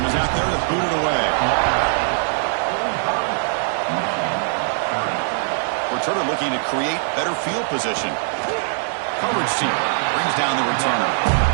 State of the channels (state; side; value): silent; left; digital silence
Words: is out there to boot it away. Returner looking to create better field position. Coverage team brings down the returner.